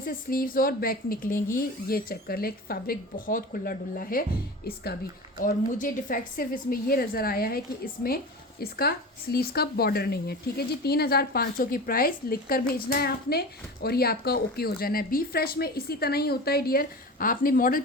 स्लीव्स और बैक निकलेंगी। ये चेक कर ले, फैब्रिक बहुत खुला डुल्ला है इसका भी। और मुझे डिफेक्ट सिर्फ इसमें ये नज़र आया है कि इसमें इसका स्लीव्स का बॉर्डर नहीं है, ठीक है जी। 3500 की प्राइस लिख कर भेजना है आपने, और ये आपका ओके हो जाना है। बी फ्रेश में इसी तरह ही होता है डियर, आपने मॉडल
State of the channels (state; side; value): normal; both; correlation 0.31